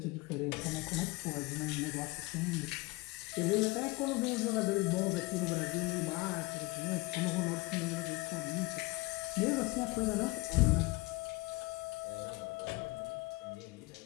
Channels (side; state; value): right; quieter; 23.0 dB